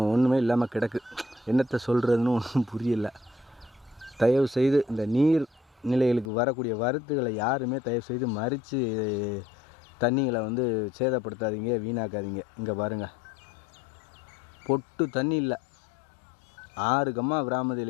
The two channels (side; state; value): right; drops out; at 6.3 s